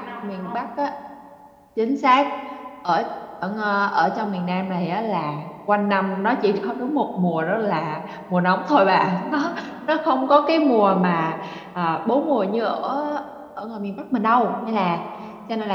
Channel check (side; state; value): both; identical; correlation 1.00